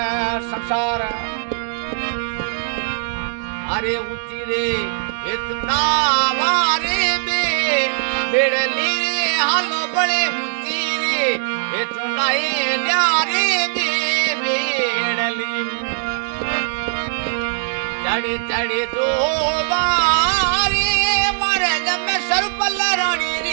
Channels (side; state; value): left; silent; 66 dB below the other